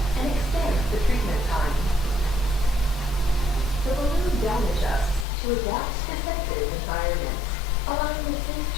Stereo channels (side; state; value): right; drops out; at 5.2 s